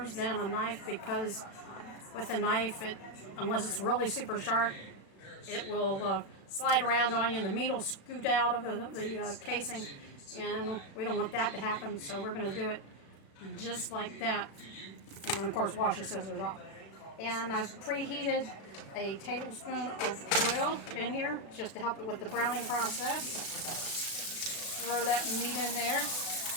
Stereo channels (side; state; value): right; late; 36 ms